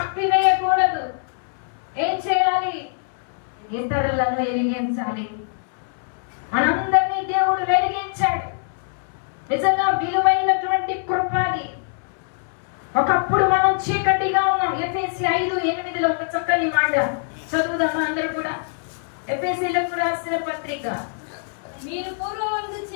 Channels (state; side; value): silent; right; 63 dB below the other